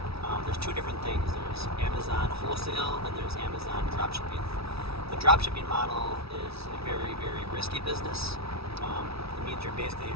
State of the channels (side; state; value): left; late; 0.77 ms